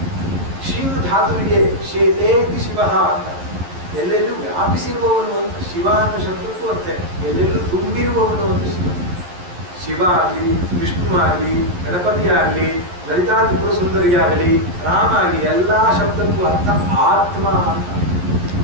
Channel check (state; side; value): late; left; 11 ms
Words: ಶಿವ ಧಾತುವಿಗೆ ಶೇತೇತಿ ಶಿವ ಅಂತ, ಎಲ್ಲೆಲ್ಲೂ ವ್ಯಾಪಿಸಿರುವವನು ಅಂತ. ಶಿವ ಅನ್ನೋ ಶಬ್ದಕ್ಕೂ ಅರ್ಥ ಎಲ್ಲೆಲ್ಲೂ ತುಂಬಿರುವವನು ಅಂತ ಶಿವ. ಶಿವ ಆಗಲಿ ವಿಷ್ಣು ಆಗಲಿ ಗಣಪತಿ ಆಗಲಿ ಲಲಿತಾ ತ್ರಿಪುರ ಸುಂದರಿ ಆಗಲಿ ರಾಮ ಆಗಲಿ ಎಲ್ಲ ಶಬ್ದಕ್ಕೂ ಅರ್ಥ ಆತ್ಮ ಅಂತ.